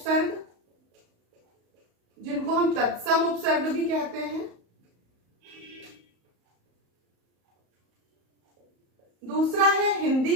जिनको हम तत्सम उपसर्ग भी कहते हैं, दूसरा है हिंदी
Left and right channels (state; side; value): late; left; 34 ms